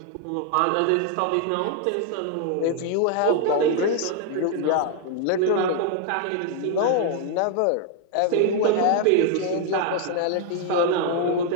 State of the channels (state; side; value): different; both; correlation 0.00